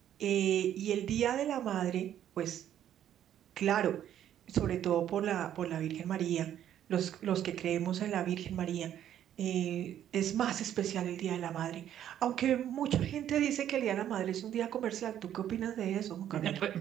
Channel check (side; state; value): left; quieter; 10.8 dB